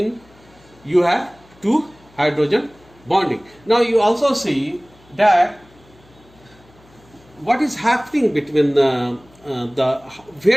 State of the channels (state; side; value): noise; left; hum, 28 dB below the sound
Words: you have 2 hydrogen bonding. Now you also see that what is happening between where